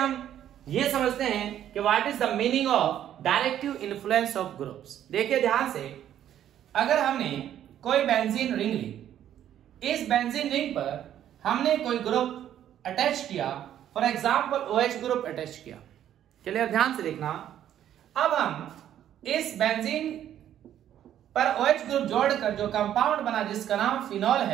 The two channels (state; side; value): quieter; left; 10.9 dB